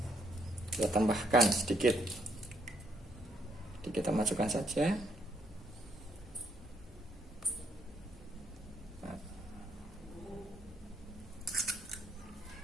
Kita tambahkan sedikit. Jadi kita masukkan saja.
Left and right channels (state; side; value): normal; both; correlation 0.71